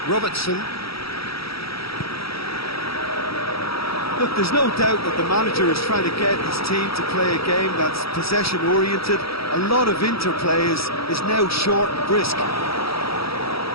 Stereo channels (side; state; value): right; late; 0.76 ms